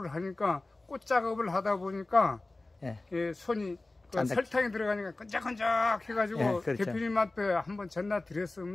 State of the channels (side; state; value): right; quieter; 3.0 dB